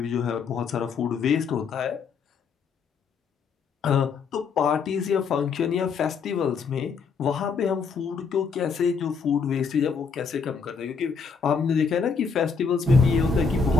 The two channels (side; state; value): right; quieter; 5.6 dB